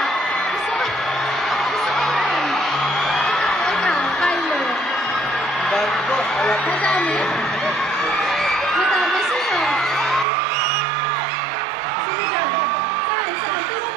Gusto ko yun. Ikaw, Kyler. Dami po. Madami? Madami, sino? Sino dyan? Saan? Tingnan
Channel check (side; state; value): left; drops out; at 10.2 s